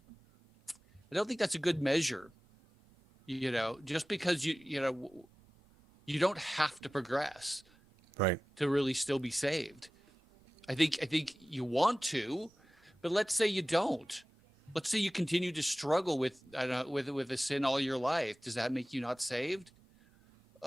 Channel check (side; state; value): both; normal; correlation 0.96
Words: I don't think that's a good measure. Just because you don't have to progress Right. to really still be saved. I think you want to, but let's say you don't. Let's say you continue to struggle with with a sin all your life. Does that make you not saved?